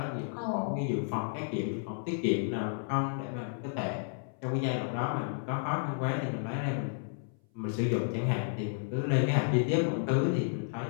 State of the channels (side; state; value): right; silent; 56 dB below the other